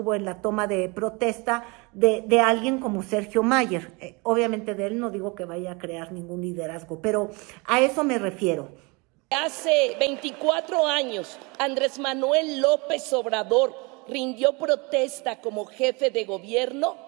en la toma de protesta de alguien como Sergio Mayer. Obviamente de él no digo que vaya a crear ningún liderazgo, pero a eso me refiero. Hace 24 años, Andrés Manuel López Obrador rindió protesta como jefe de gobierno.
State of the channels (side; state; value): left; quieter; 28.3 dB